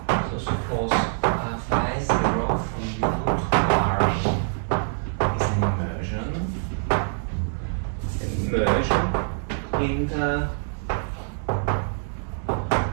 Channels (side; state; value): left; silent; 56 dB below the other